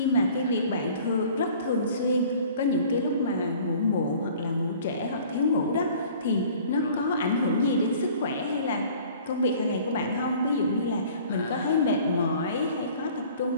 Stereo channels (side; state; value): both; inverted; correlation -0.50